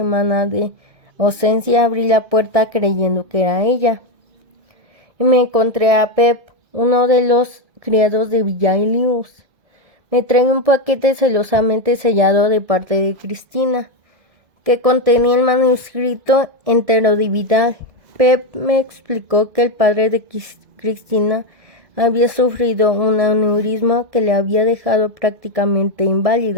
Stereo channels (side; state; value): left; late; 2.0 ms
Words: de ausencia abrí la puerta creyendo que era ella. Y me encontré a Pep, uno de los criados de Villaelius. Me trae un paquete celosamente sellado de parte de Cristina, que contenía el manuscrito entero de Vidal. Pep me explicó que el padre de Cristina había sufrido un aneurisma que le había dejado prácticamente